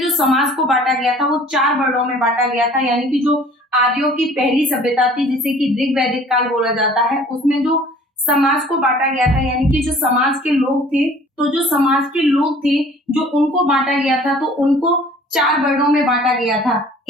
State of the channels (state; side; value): normal; both; correlation 0.51